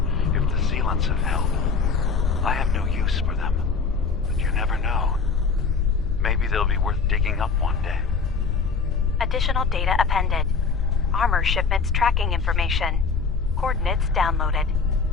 if the sealants have held. I have no use for them, but you never know. Maybe they'll be worth digging up one day. Additional data appended. Armor shipments tracking information. Coordinates downloaded.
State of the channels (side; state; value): right; quieter; 5.0 dB